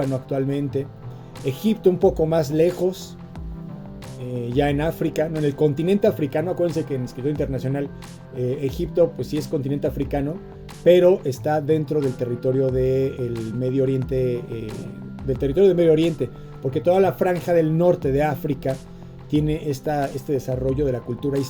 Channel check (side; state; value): both; identical; correlation 1.00